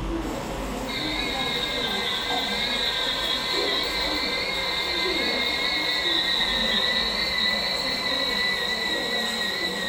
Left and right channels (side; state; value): both; identical; correlation 1.00